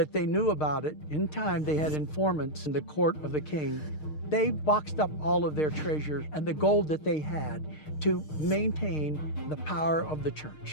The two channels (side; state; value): right; late; 6.5 ms